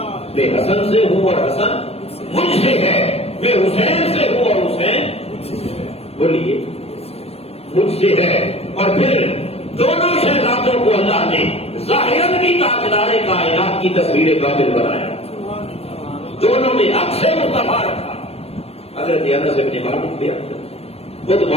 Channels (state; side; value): late; right; 0.29 ms